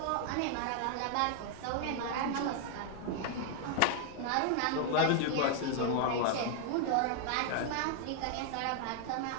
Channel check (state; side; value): different; both; correlation 0.00